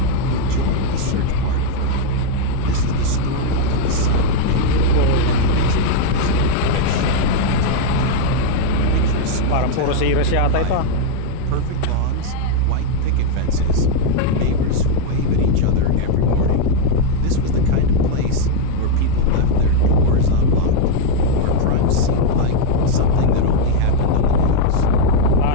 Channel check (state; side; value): different; both; correlation 0.01